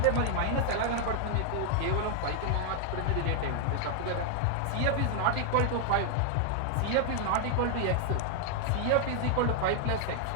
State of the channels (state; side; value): different; both; correlation 0.00